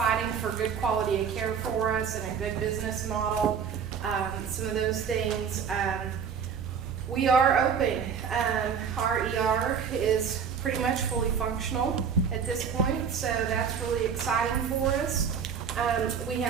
for good quality of care for us and a good business model. Some of those things. We are open. Our ER is pretty much fully functional at this point, so that's really exciting for us. We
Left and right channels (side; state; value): left; quieter; 6.9 dB